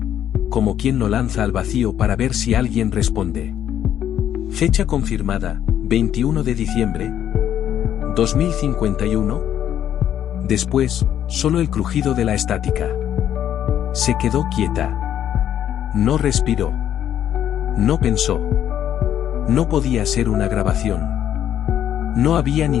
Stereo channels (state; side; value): quieter; right; 10.5 dB